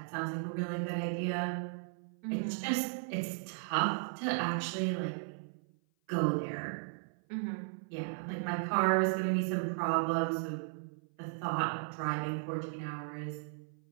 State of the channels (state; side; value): silent; left; 54 dB below the other